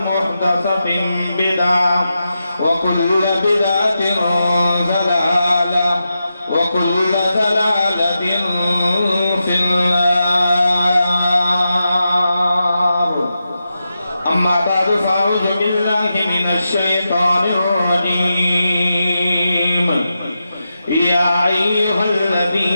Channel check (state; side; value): inverted; both; correlation -0.89